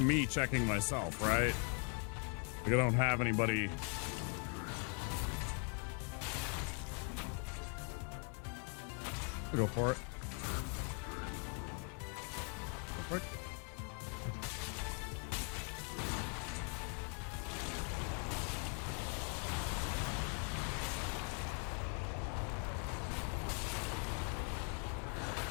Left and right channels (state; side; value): quieter; right; 37.8 dB